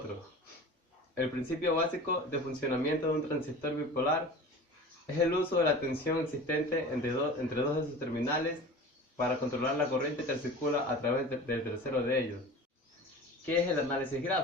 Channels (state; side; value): normal; both; correlation 0.37